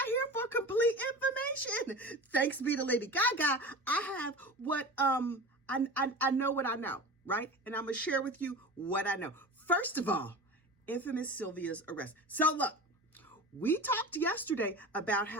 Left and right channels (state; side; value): normal; both; correlation 0.32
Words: here for complete information. Thanks be to Lady Gaga. I have what I know what I know, right? And I'm gonna share with you what I know. First of all, infamous Sylvia's arrest. So look, we talked yesterday about